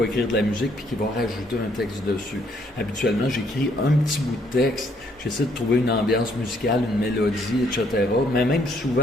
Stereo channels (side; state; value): both; normal; correlation 0.68